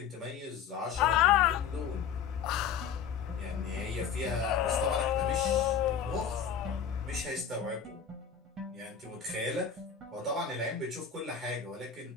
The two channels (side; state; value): right; quieter; 7.5 dB